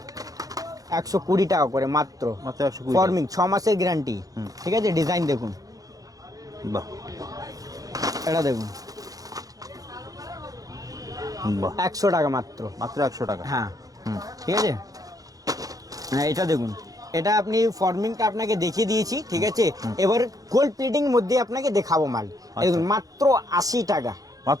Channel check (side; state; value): left; late; 0.17 ms